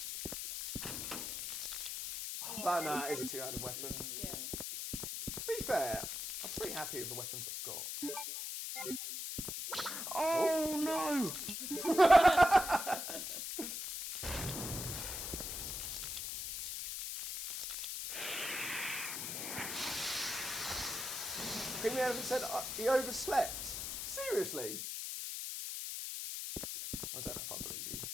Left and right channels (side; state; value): left; noise; hiss, 4 dB below the sound